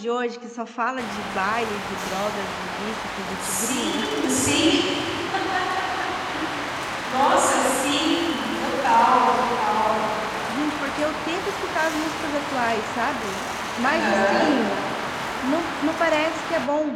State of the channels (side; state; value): both; identical; correlation 1.00